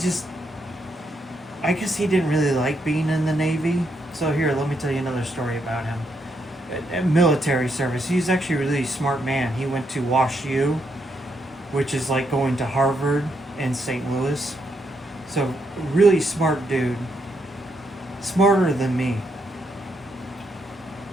I guess he didn't really like being in the Navy. So here, let me tell you another story about him. Military service. He's actually a really smart man. He went to Wash U, which is like going to Harvard in St. Louis. So really smart dude. Smarter than me.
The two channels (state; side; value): normal; both; correlation 0.78